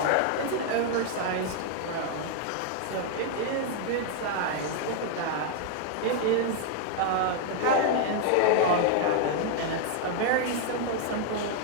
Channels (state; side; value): different; both; correlation 0.00